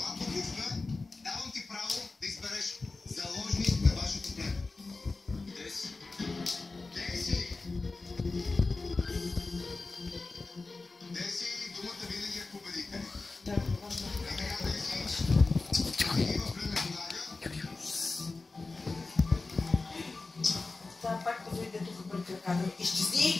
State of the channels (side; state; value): right; quieter; 3.7 dB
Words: Давам ти право да избереш заложник на вашето племе. Деси. Деси! Деси, думата винаги е победите. Сега пак да дойде тук пред краката.